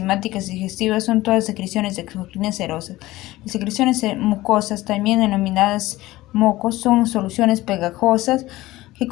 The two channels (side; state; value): right; quieter; 17.7 dB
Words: digestivas son todas secreciones exocrinas serosas. Las secreciones mucosas, también denominadas mocos, son soluciones pegajosas que